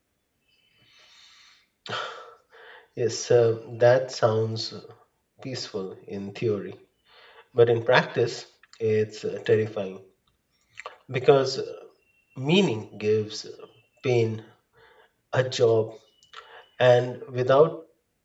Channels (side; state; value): both; identical; correlation 1.00